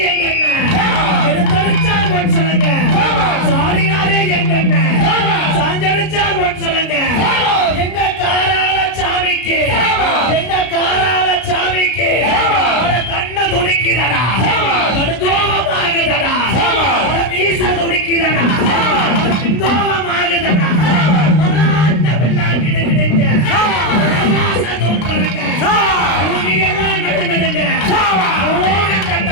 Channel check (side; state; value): right; late; 33 ms